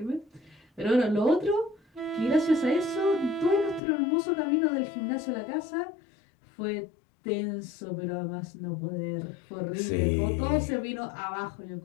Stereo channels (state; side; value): drops out; right; at 3.8 s